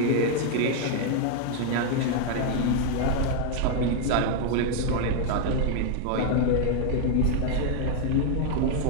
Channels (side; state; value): both; different; correlation 0.00